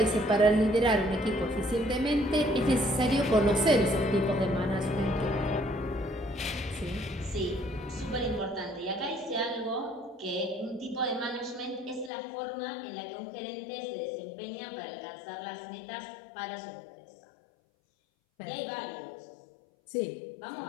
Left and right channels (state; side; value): drops out; right; at 12.1 s